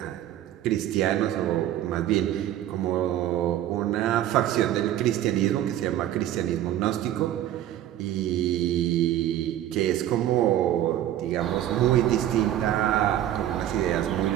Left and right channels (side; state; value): left; quieter; 12.3 dB